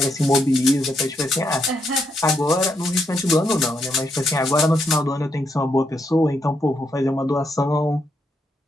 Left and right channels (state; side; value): normal; both; correlation 0.79